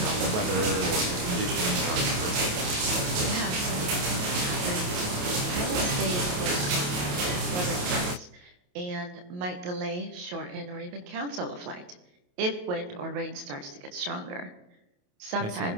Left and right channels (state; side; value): late; left; 28 ms